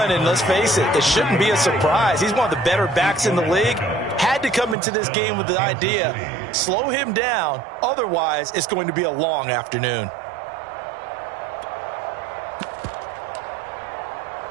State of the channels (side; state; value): left; drops out; at 4.8 s